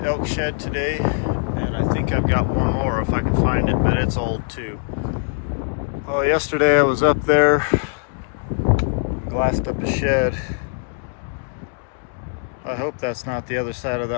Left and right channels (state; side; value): silent; right; digital silence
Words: elk shed today. And I think I've got one more if I can find it, but it's old too. Well, yesterday I was up there, glassed up a shed. I hope that's not the other side of